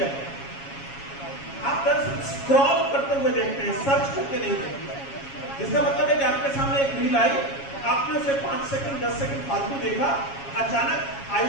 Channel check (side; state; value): right; late; 7.3 ms